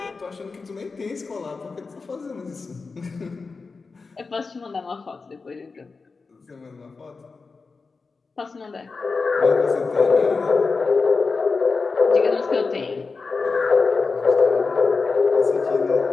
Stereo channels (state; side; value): quieter; right; 4.3 dB